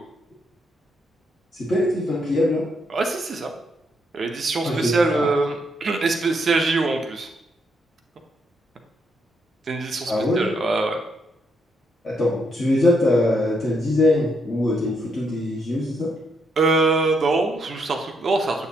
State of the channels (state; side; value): normal; both; correlation 0.76